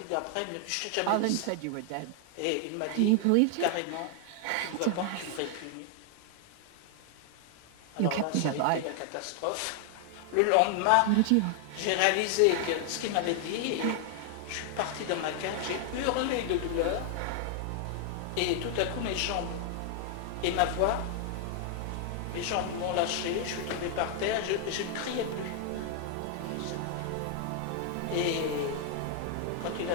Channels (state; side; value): different; both; correlation 0.00